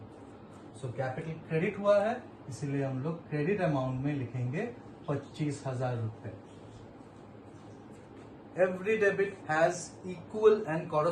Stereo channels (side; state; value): both; identical; correlation 1.00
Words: सो कैपिटल क्रेडिट हुआ है, इसीलिए हम लोग क्रेडिट अमाउंट में लिखेंगे 25,000 रुपए। Every debit has equal and